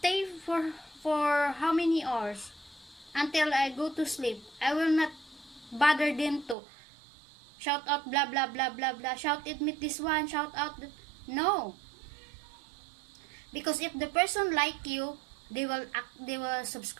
for how many hours until I go to sleep. I will not bother them to shout out blah blah blah blah blah, shout it with this one, shout out no. Because if the person like you, they will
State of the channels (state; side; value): drops out; left; at 6.6 s